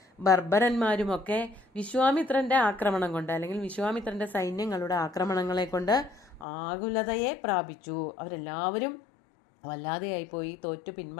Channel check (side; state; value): right; drops out; at 6.5 s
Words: ബർബരന്മാരുമൊക്കെ വിശ്വാമിത്രന്റെ ആക്രമണം കൊണ്ട്, അല്ലെങ്കിൽ വിശ്വാമിത്രന്റെ സൈന്യങ്ങളുടെ ആക്രമണങ്ങളെ കൊണ്ട് ആകുലതയെ പ്രാപിച്ചു. അവരെല്ലാവരും വല്ലാതെയായിപ്പോയി, തോറ്റു